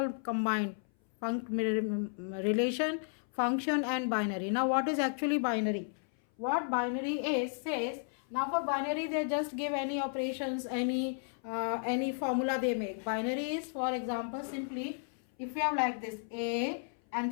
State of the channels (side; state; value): right; silent; 55 dB below the other